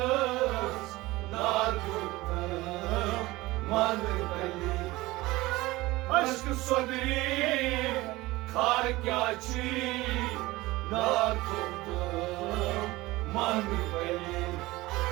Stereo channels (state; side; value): quieter; left; 19.6 dB